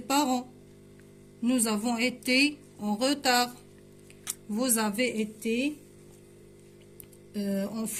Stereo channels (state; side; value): identical; both; correlation 1.00